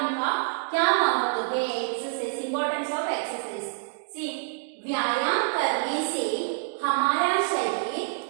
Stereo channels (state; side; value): silent; left; digital silence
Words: का क्या महत्व है? Exercise, importance of exercise. See, व्यायाम करने से हमारा शरीर